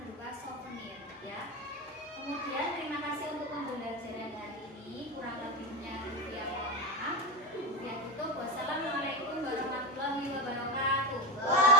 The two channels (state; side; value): normal; both; correlation 0.18